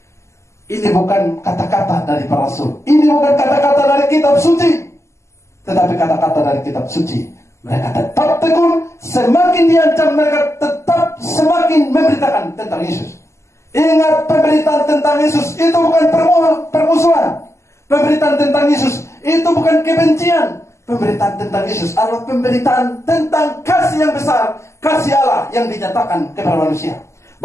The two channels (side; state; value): right; late; 0.13 ms